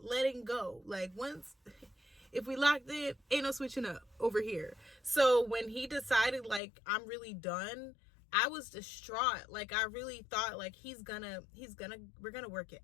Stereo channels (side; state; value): right; drops out; at 6.6 s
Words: letting go. Like, once, if we locked in, ain't no switching up over here. So when he decided like I'm really done, I was distraught. Like, I really thought like we're gonna work it